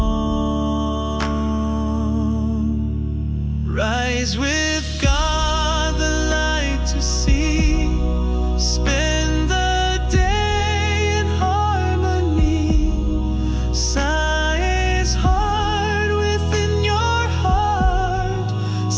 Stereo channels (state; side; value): identical; both; correlation 1.00